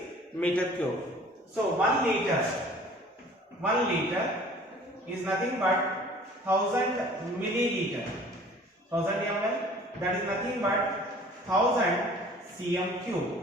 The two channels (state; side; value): normal; both; correlation 0.50